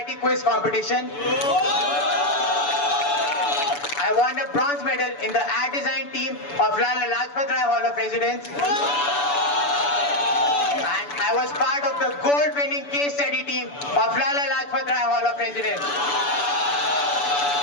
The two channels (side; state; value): right; late; 6.9 ms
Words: quiz competition. I won a bronze medal in the ad design team of Lala Lajpat Rai Hall of Residence. And I was part of the gold winning case study team of Lala Lajpat Rai Hall of Residence.